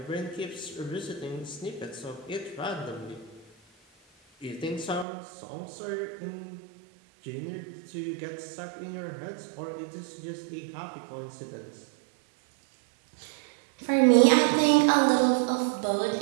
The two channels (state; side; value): drops out; left; at 5.1 s